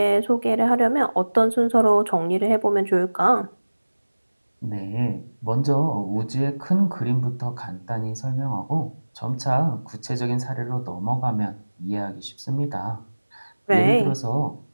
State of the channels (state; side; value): inverted; both; correlation -1.00